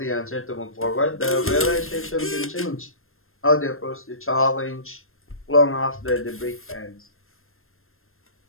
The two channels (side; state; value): right; late; 0.61 ms